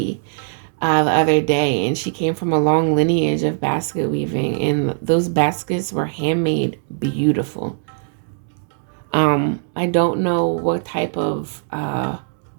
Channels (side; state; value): left; silent; digital silence